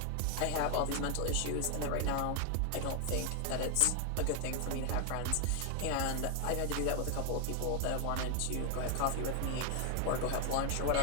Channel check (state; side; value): different; both; correlation 0.00